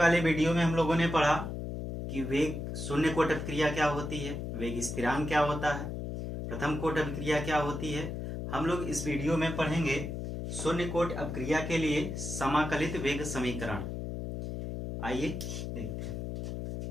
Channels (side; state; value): left; noise; hum, 5 dB below the sound